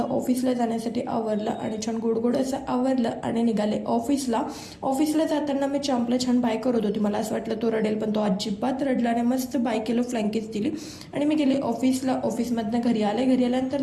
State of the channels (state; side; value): identical; both; correlation 1.00